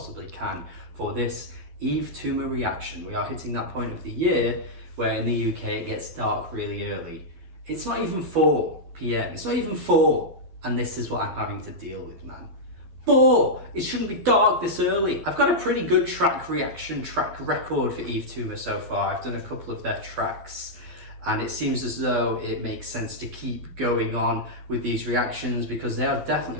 can for this Yves Tumor reaction. We are hitting that point of the year where in the UK it gets dark really early. It's not even 4 p.m. It's not even 4, and this is what I'm having to deal with, man. 4! It shouldn't be dark this early. I've got a pretty good track record for Yves Tumor so far. I've done a couple of their tracks, and it seems as though it makes sense to keep going on with these reactions because they are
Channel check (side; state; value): left; late; 12 ms